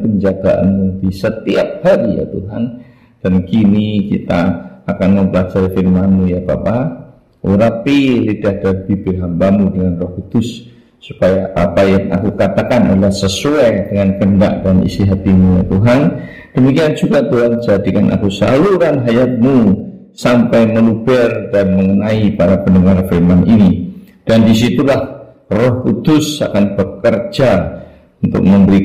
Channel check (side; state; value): both; identical; correlation 1.00